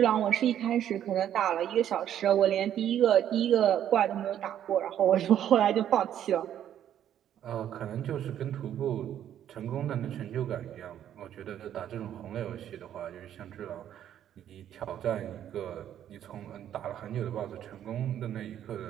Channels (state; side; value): quieter; left; 10.5 dB